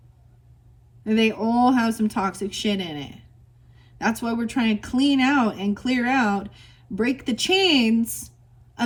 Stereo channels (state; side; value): identical; both; correlation 1.00